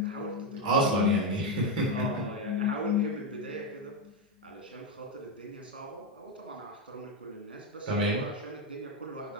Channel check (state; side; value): normal; both; correlation 0.08